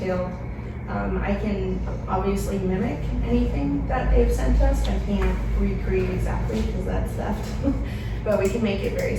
I can obviously mimic anything that they've sent us. I can't recreate exactly because that's theft, but we can make it very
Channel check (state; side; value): identical; both; correlation 1.00